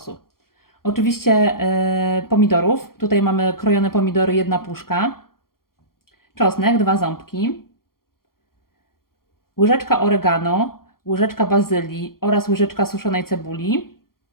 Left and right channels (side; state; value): right; late; 0.93 ms